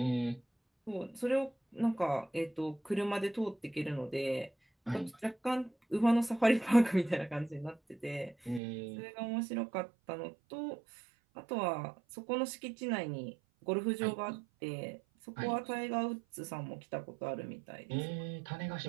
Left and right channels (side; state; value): left; drops out; at 8.6 s